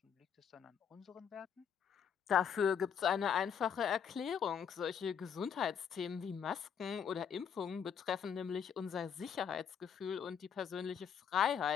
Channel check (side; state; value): right; quieter; 7.7 dB